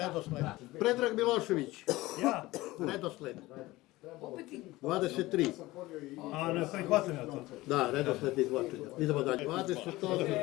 Predrag Milošević. Ja. Redosled. 23. A ne prihvatam ja to. Da, redosled izvlačenja. Idemo dalje.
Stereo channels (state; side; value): quieter; right; 18.9 dB